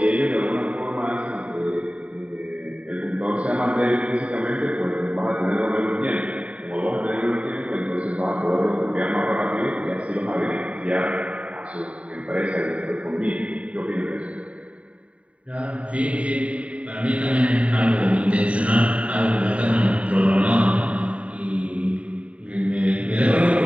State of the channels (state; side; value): late; left; 0.065 ms